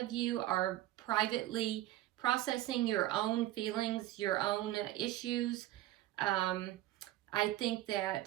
you are privately processing your own feelings, your own issues. I think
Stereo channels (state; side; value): quieter; left; 15.2 dB